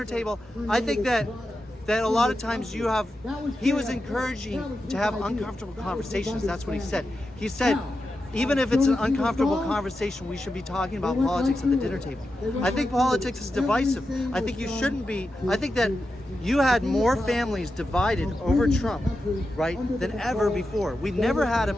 table, I think that a lot of times he was encouraging to have uncomfortable conversations. That's what he said. He said, even if it's an uncomfortable conversation, we should be talking about politics at the dinner table. I think politics is divisive. I think you shouldn't be. I think that you had more families divided over Trump, right, than ever before. We've never had a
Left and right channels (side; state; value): both; normal; correlation 0.90